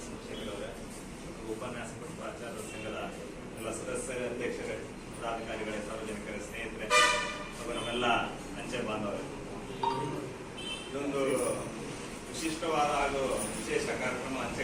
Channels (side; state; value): both; identical; correlation 1.00